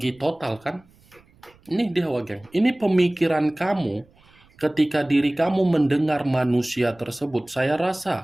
total kan? Ini dia, Wak Geng. Ini pemikiran kamu ketika diri kamu mendengar manusia tersebut. Saya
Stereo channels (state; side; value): noise; right; rumble, 30 dB below the sound